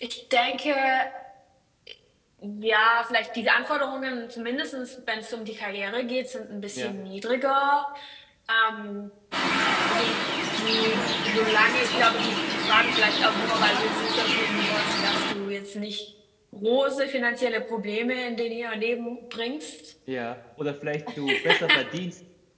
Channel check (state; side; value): identical; both; correlation 1.00